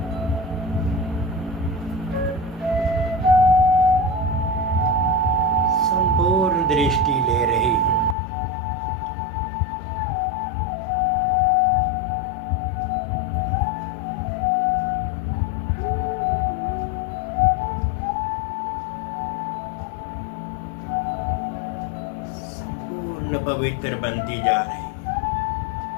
संपूर्ण दृष्टि ले रही हूं। संपूर्ण पवित्र बनती जा रही।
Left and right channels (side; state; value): right; drops out; at 8.2 s